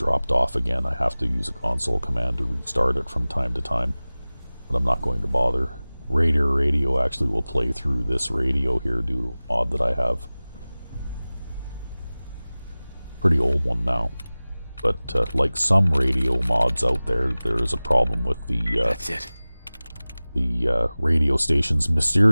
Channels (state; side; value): inverted; both; correlation -0.98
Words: off again. I have to use a console command to restart it from time to time. But I'm not going to bother. Raider radio actually will play through this radio here due to a mod that I have. Pretty old one now. But like some radio mods out there, there is a problem with the That's it. The radio stations